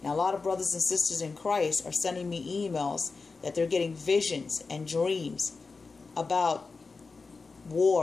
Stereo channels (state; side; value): quieter; right; 4.3 dB